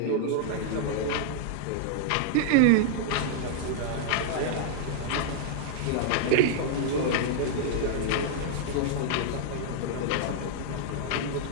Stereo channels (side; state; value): both; different; correlation -0.01